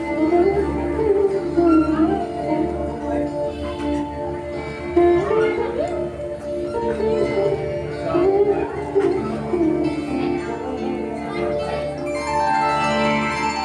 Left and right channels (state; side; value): identical; both; correlation 1.00